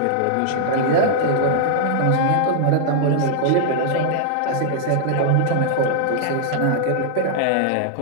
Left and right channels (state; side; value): different; both; correlation -0.01